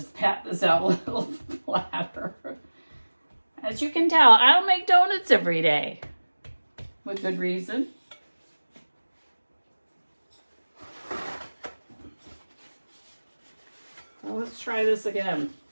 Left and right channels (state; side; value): inverted; both; correlation -1.00